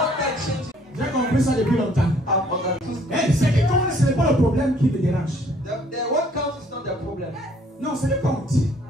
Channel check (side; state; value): both; normal; correlation 0.61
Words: that changes. J'ai compris ça depuis longtemps. I've understood. Eh, c'est que comme ce n'est pas le problème qui me dérange. The what counts is not the problem. Non, c'est le compte.